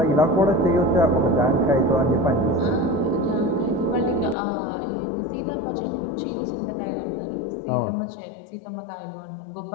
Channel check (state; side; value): drops out; right; at 4.4 s